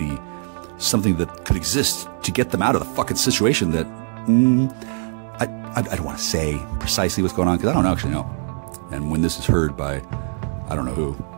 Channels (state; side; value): silent; left; 64 dB below the other